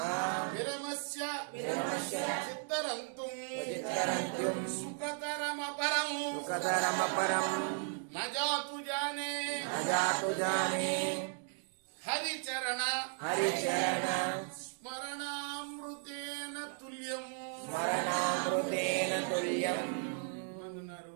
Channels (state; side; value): silent; left; 54 dB below the other